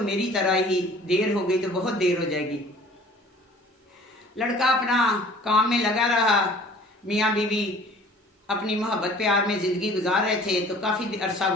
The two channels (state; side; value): normal; both; correlation 0.50